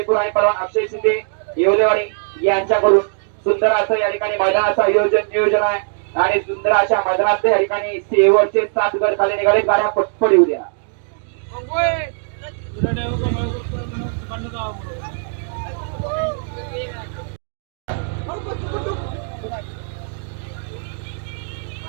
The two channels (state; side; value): silent; left; digital silence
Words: आणि पलवान अक्षय शिंदे येवलेवाडी यांच्याकडून सुंदर असं या ठिकाणी मैदानाचं नियोजन आहे आणि सुंदर अशा मैदानात या ठिकाणी शेवटचे 7 गट खाली निघाले गाड्या पटपट येऊ द्या.